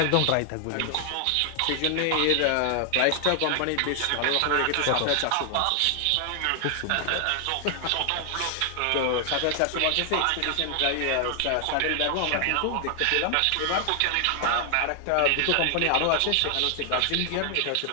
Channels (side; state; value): both; different; correlation 0.00